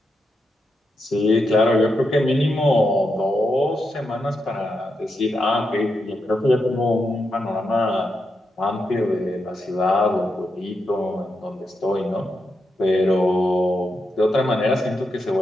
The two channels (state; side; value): normal; both; correlation 0.84